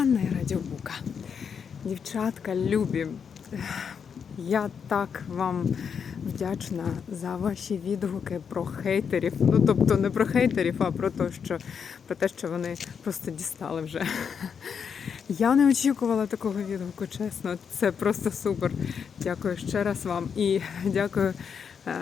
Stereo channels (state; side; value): quieter; right; 6.8 dB